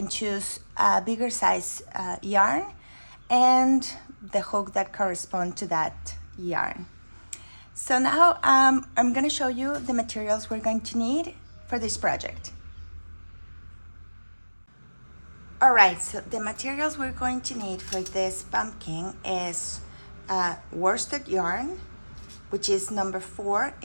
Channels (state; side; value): inverted; both; correlation -1.00